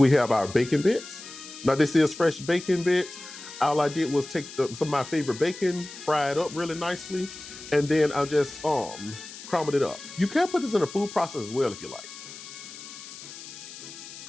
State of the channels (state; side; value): noise; left; hiss, 14 dB below the sound